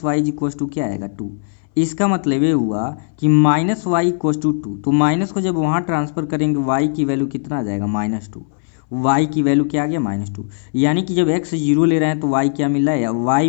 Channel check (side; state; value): right; silent; 62 dB below the other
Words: y is equals to क्या आएगा 2। इसका मतलब ये हुआ कि माइनस वाई इक्वस टू 2, तो माइनस को जब वहाँ ट्रांसफर करेंगे y की वैल्यू कितना आ जाएगा -2। y की वैल्यू क्या आ गया -2, यानी कि जब x जीरो ले रहे हैं तो y क्या मिल रहा है, या y